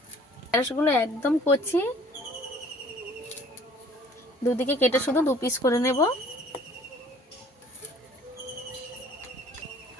ঢেঁড়সগুলো একদম কচি, দুদিকে কেটে শুধু 2 পিস করে নেব।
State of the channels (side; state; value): both; normal; correlation 0.53